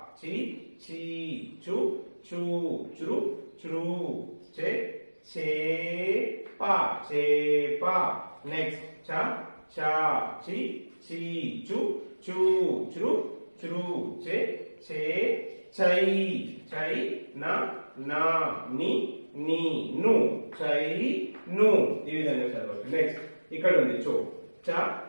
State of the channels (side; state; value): both; inverted; correlation -1.00